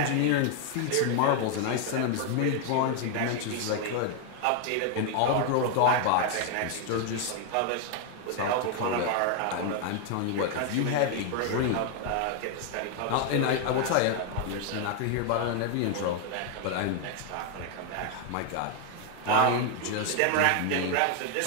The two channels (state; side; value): different; both; correlation 0.01